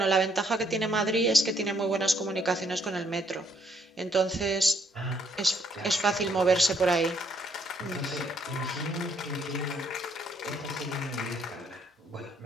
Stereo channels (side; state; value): both; normal; correlation 0.70